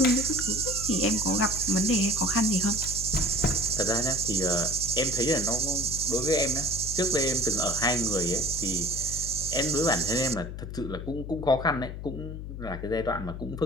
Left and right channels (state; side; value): noise; left; hum, 8 dB below the sound